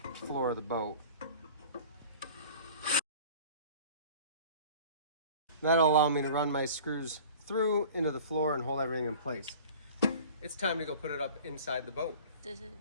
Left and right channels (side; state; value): both; inverted; correlation -0.43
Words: floor of the boat. That'll allow me to run my screws through into the floor and hold everything in place. It's time to go put it up inside the boat. This is